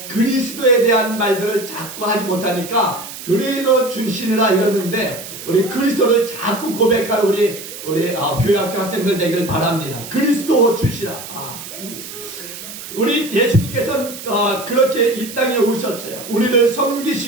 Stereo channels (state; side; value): noise; right; hiss, 12 dB below the sound